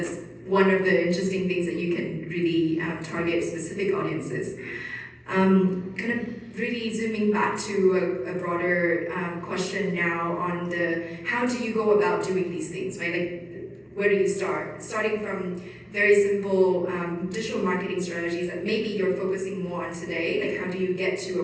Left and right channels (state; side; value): identical; both; correlation 1.00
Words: one of the interesting things that you can really target specific audiences. Kind of really zooming back to a broader question now on how do you go about doing these things, right? Where do you start? Starting from very simple digital marketing strategies that maybe you're focusing more on today, how do you get to